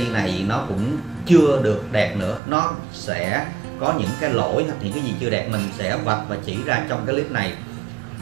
này nó cũng chưa được đẹp nữa, nó sẽ có những cái lỗi hoặc những cái gì chưa đẹp mình sẽ vạch và chỉ ra trong cái clip này.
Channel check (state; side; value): drops out; left; at 2.4 s